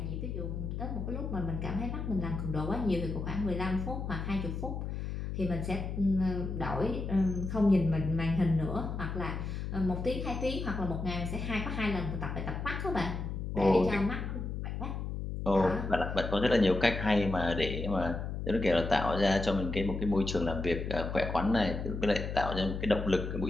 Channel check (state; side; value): noise; left; hum, 4 dB below the sound